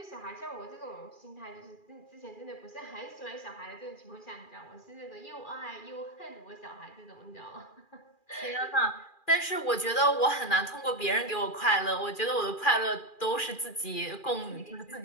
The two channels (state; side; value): late; right; 2.4 ms